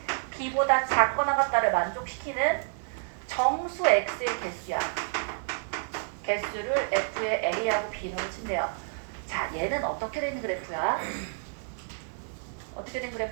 b보다 작거나 같다를 만족시키는 정수 x의 개수야. 개수를 f의 a하고 b로 친대요. 자, 얘는 어떻게 된 그래프야? 어떻게 된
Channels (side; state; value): left; silent; digital silence